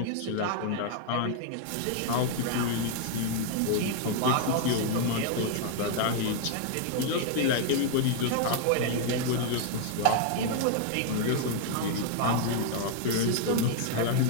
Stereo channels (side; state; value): both; different; correlation 0.00